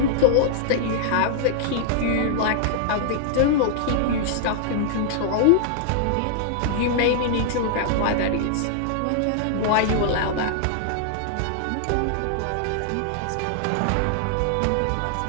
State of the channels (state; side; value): different; both; correlation -0.01